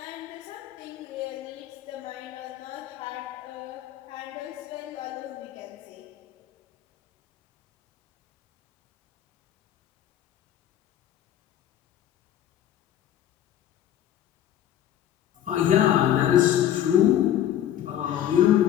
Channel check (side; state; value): right; quieter; 11.3 dB